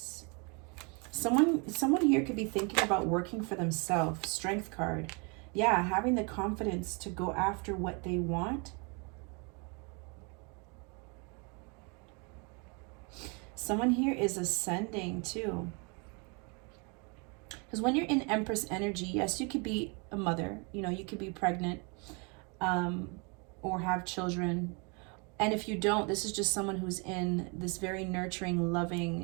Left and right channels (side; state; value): left; quieter; 32.7 dB